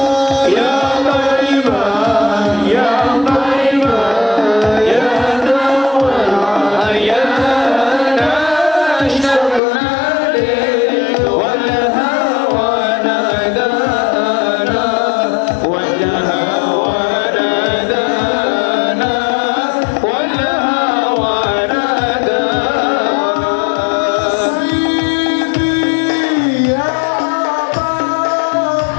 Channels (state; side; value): drops out; right; at 9.6 s